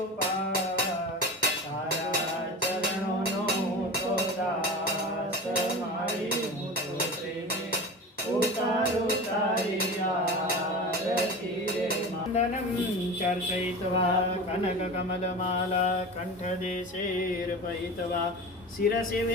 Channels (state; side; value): normal; both; correlation 0.31